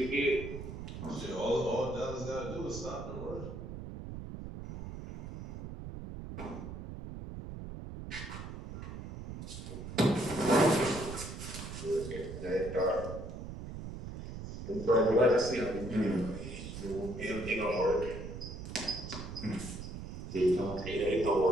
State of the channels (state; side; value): noise; right; rumble, 9 dB below the sound